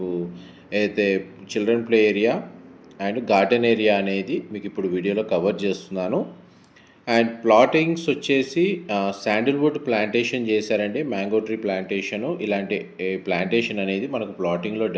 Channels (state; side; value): identical; both; correlation 1.00